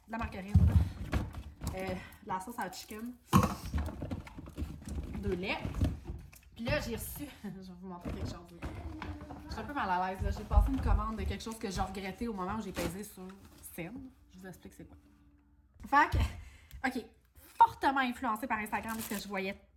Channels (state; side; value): identical; both; correlation 1.00